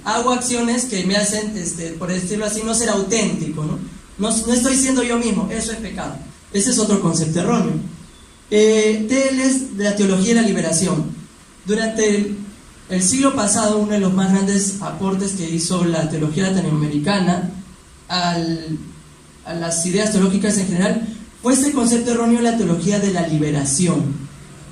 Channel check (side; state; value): both; identical; correlation 1.00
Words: hago acciones que me hacen, por decirlo así, no ser auténtico, no estoy siendo yo mismo, eso es pecado. Ese es otro concepto erróneo. Teles de la teología de la liberación. Durante el siglo pasado, uno de los más grandes aportes que hizo la teología latinoamericana a las ideas teológicas en general fue este concepto erróneo de la teología de la liberación.